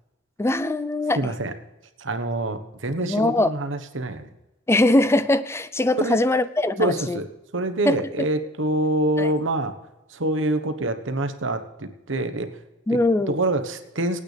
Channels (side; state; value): both; normal; correlation 0.47